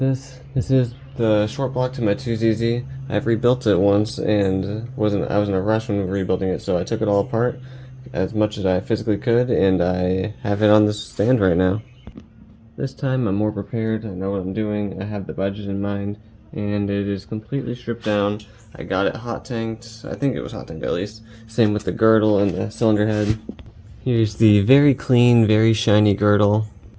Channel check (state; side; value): identical; both; correlation 1.00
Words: this is the short block to my 2ZZ. I've rebuilt it once and I was in a rush when rebuilding it, so I took it all apart as much as I physically could, and I have it on this stand right now. This time I'm more prepared, I know what I'm doing, I have the budget in mind, and it is completely stripped down. I got it hot tanked, I think it was hot tanked at least. Same with the girdle and the cylinder head. Here's the very clean, very shiny girdle.